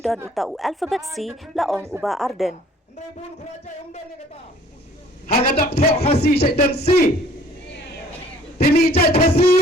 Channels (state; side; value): normal; both; correlation 0.55